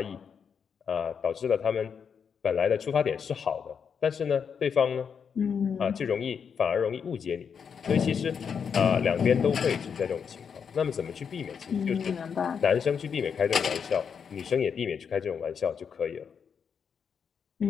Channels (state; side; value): quieter; right; 6.8 dB